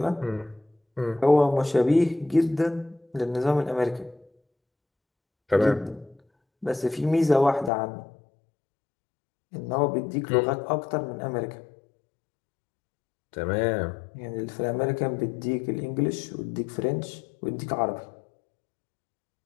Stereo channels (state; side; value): drops out; right; at 7.7 s